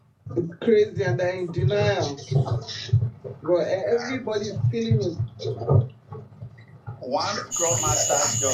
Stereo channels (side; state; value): both; identical; correlation 1.00